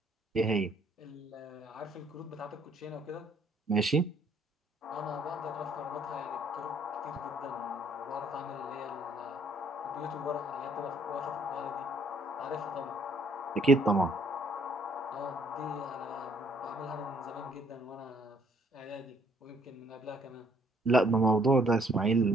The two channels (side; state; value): both; normal; correlation 0.64